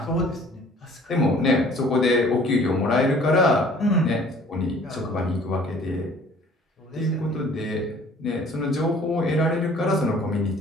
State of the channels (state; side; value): normal; both; correlation 0.53